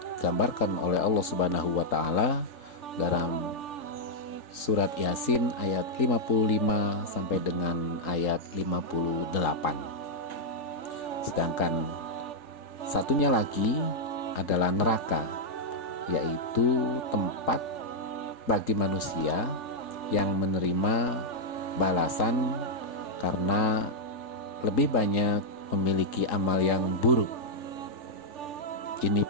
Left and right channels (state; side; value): late; right; 3.8 ms